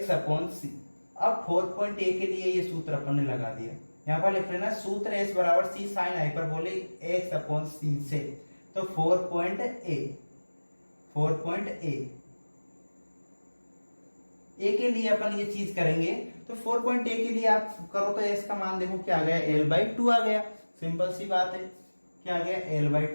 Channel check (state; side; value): inverted; both; correlation -1.00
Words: अपॉन सी। अब 4.a के लिए ये सूत्र अपन ने लगा दिया, यहाँ पर लिख लेना सूत्र एस बराबर सी साइन हाइपरबोलिक एक्स अपॉन सी से। तो 4.a ए के लिए अपन ये चीज करेंगे। तो 4.a के लिए आप करो तो एस का मान देखो क्या आ गया, l/2 आ गया। सिंपल सी बात है, क्या आ गया,